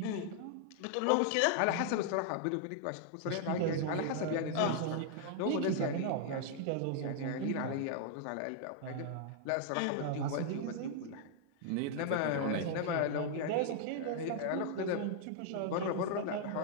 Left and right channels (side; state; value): both; different; correlation -0.01